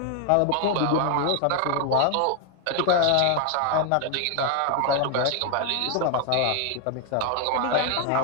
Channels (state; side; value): different; both; correlation 0.00